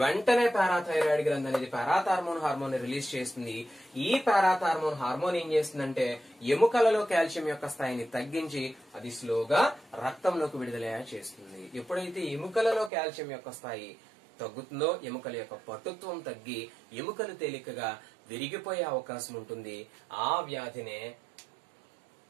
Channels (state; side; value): drops out; left; at 12.9 s